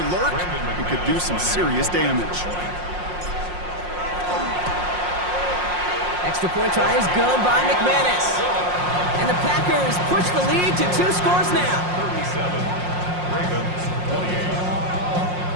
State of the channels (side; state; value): left; late; 5.6 ms